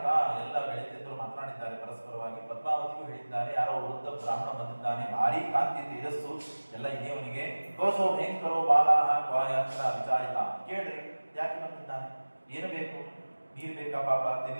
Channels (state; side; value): inverted; both; correlation -1.00